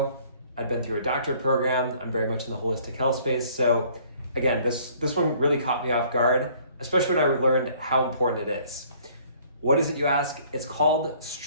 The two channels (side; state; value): both; inverted; correlation -0.58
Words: I've been through a doctorate program. I'm very much in the holistic health space. So again, this one really caught me off guard, especially when I learned how important it is. What is it, you ask? It's called